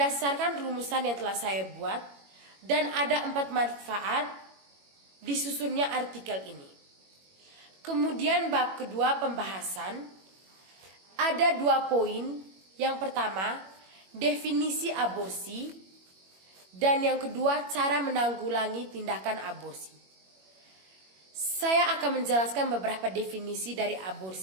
rumusan yang telah saya buat, dan ada 4 manfaat disusunnya artikel ini. Kemudian bab kedua pembahasan, ada 2 poin. Yang pertama definisi aborsi, dan yang kedua cara menanggulangi tindakan aborsi. Saya akan menjelaskan beberapa definisi dari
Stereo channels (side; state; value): left; late; 21 ms